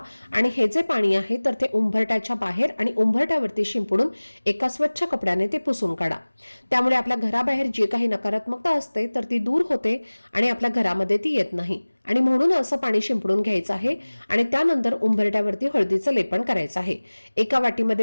आणि हे जे पाणी आहे तर ते उंबरठ्याच्या बाहेर आणि उंबरठ्यावरती शिंपडून एका स्वच्छ कपड्याने ते पुसून काढा. त्यामुळे आपल्या घराबाहेर जी काही नकारात्मकता असते तर ती दूर होते आणि आपल्या घरामध्ये ती येत नाही आणि म्हणून असं पाणी शिंपडून घ्यायचं आहे आणि त्यानंतर उंबरठ्यावरती हळदीचं लेपन करायचं आहे. एका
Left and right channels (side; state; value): both; inverted; correlation -1.00